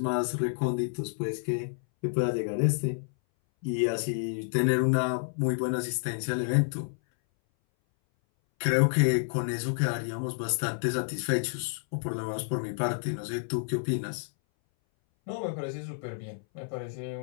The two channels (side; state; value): right; silent; 58 dB below the other